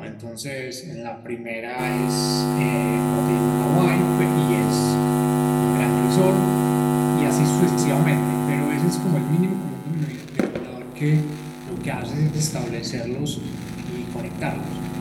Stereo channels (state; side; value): identical; both; correlation 1.00